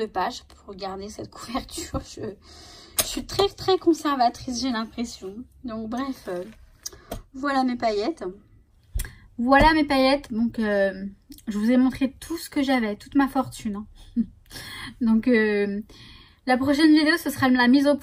pages pour garder cette couverture. Je suis très conservatrice, j'ai l'impression. Donc bref, voilà mes paillettes. Voilà mes paillettes. Donc je vous ai montré tout ce que j'avais, toute ma fortune. Hein. Donc la prochaine vidéo, ce sera la mise au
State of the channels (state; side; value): identical; both; correlation 1.00